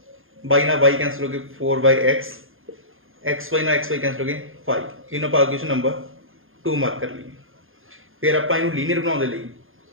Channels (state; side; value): late; left; 0.60 ms